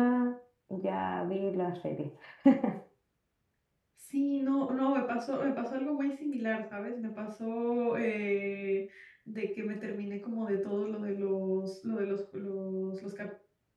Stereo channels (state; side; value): identical; both; correlation 1.00